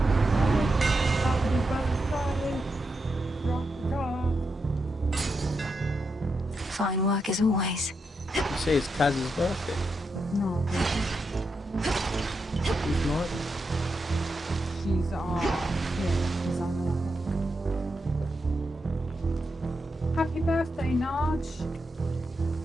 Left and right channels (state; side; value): normal; both; correlation 0.85